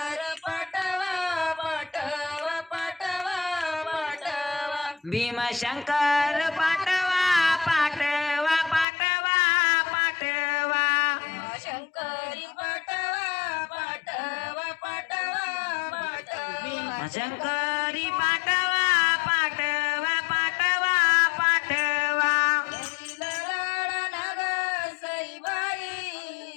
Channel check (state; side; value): drops out; right; at 8.8 s